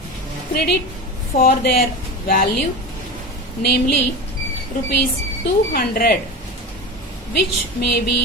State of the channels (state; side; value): normal; both; correlation 0.26